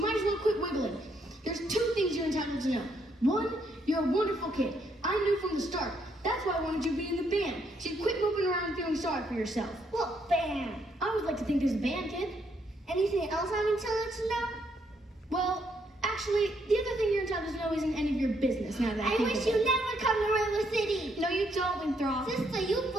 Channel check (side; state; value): both; normal; correlation 0.73